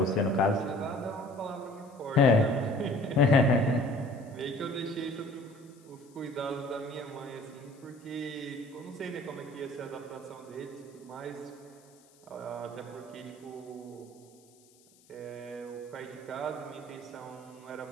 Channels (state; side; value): noise; left; hiss, 29 dB below the sound